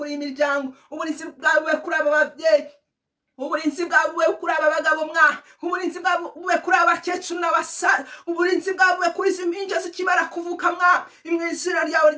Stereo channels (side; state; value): both; identical; correlation 1.00